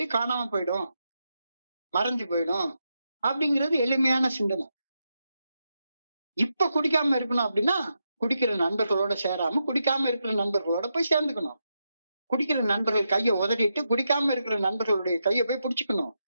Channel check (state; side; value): inverted; both; correlation -0.85